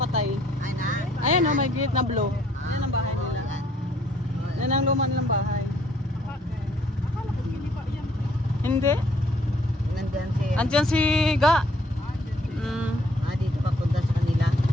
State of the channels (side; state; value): both; normal; correlation 0.64